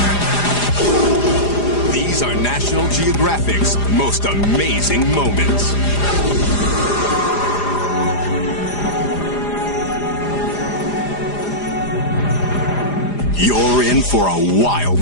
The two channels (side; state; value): right; late; 4.9 ms